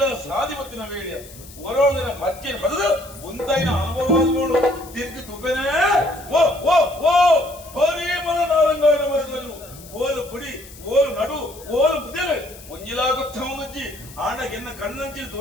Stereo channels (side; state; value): left; noise; hiss, 19 dB below the sound